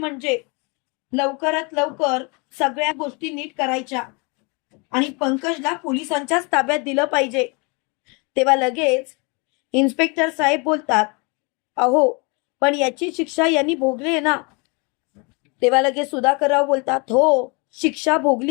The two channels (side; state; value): right; quieter; 30.6 dB